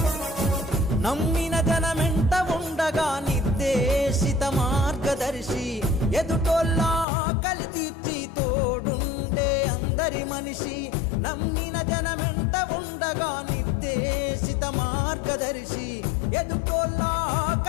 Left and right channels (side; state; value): right; drops out; at 7.1 s